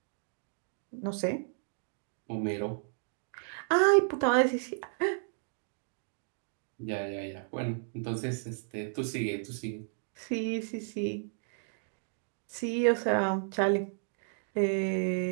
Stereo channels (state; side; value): silent; left; digital silence